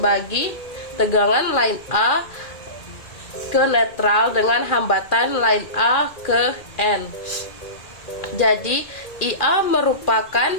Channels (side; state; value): right; late; 2.4 ms